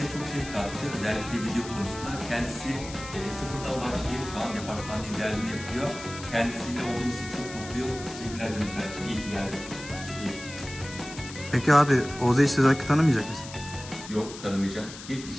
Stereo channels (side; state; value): left; noise; hiss, 13 dB below the sound